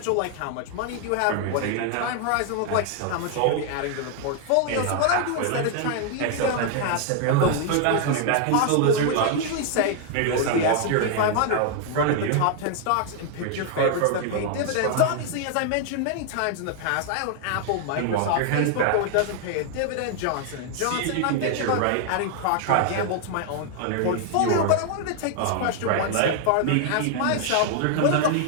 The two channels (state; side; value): different; both; correlation 0.00